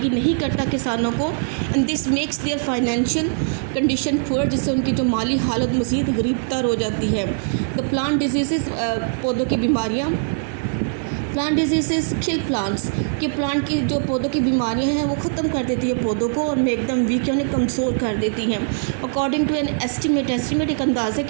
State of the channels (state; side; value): silent; left; digital silence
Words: नहीं करता किसानों को। And this makes there financial condition poor, जिससे उनकी जो माली हालत मज़ीद गरीबतर हो जाती है। द प्लांट डिजीज़, पौधों की बीमारियाँ, प्लांट डिजीज़ किल प्लांट्स, कि प्लांट की जो पौधों की बीमारियां हैं वो ख़त्म कर देती है पौधों को, और में एकदम वीक यानी कमज़ोर कर देती हैं। अकॉर्डिंग टू एन एस्टीमेट एक अंदाज़े